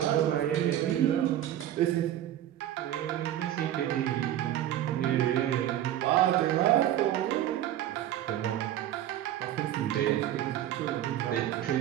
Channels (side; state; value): left; quieter; 12.1 dB